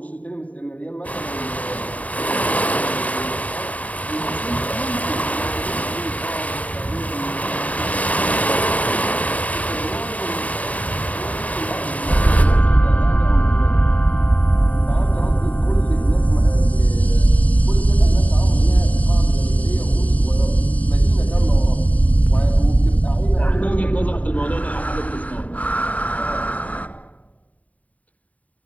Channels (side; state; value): right; late; 0.070 ms